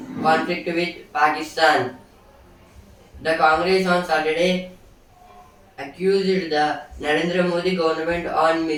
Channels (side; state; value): both; identical; correlation 1.00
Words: conflict with Pakistan. The Congress on Saturday accused the Narendra Modi government on